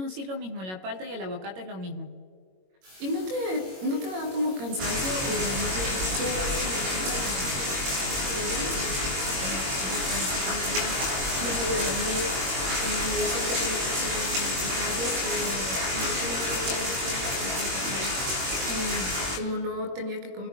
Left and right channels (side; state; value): left; late; 21 ms